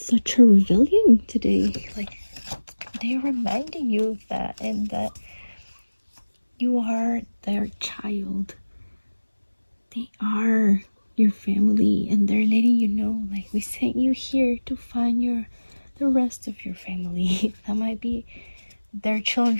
such a rebellion today. Like, they're reminding you of that, and that you are their child. They are your family, and they're letting you know, like, we sent you here to find the rest of your family. That might be their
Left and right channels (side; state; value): both; inverted; correlation -1.00